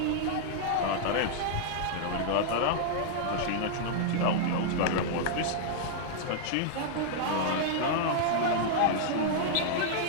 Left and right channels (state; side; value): different; both; correlation -0.01